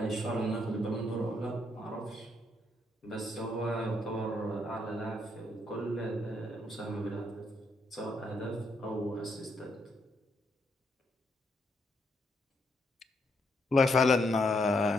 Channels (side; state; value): both; normal; correlation 0.76